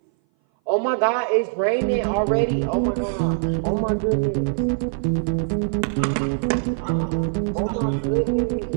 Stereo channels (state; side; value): silent; left; 59 dB below the other